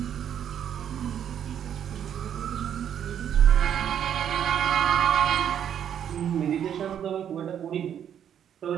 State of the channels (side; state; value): left; quieter; 9.3 dB